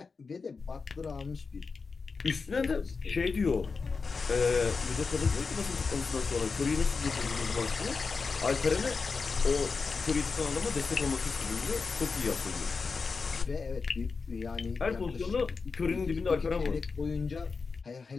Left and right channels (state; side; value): quieter; right; 4.7 dB